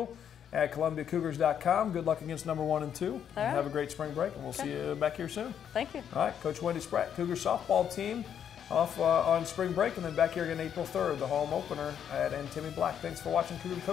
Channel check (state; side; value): quieter; right; 8.8 dB